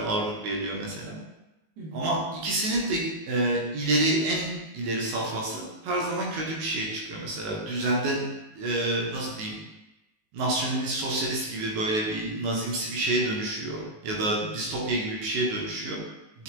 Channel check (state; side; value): late; left; 19 ms